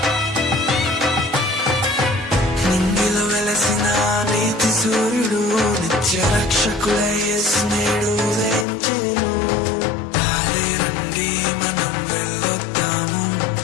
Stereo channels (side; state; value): right; drops out; at 8.7 s